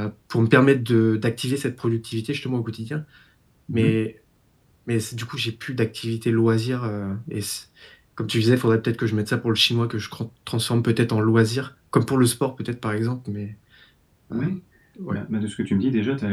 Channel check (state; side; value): identical; both; correlation 1.00